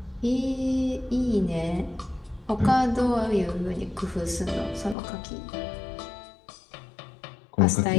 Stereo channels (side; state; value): right; drops out; at 5.0 s